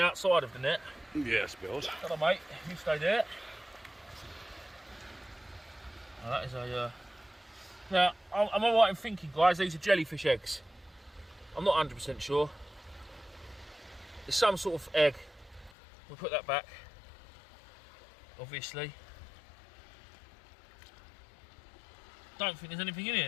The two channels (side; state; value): right; drops out; at 15.7 s